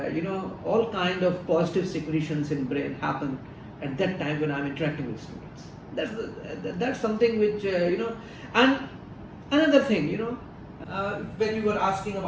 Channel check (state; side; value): identical; both; correlation 1.00